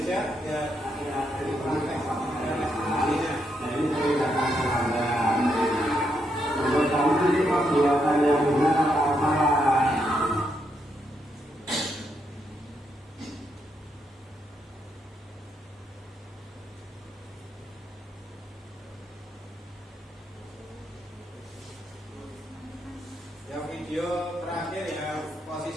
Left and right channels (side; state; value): both; normal; correlation 0.79